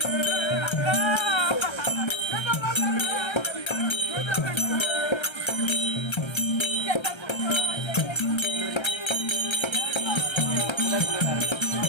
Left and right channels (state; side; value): late; right; 1.3 ms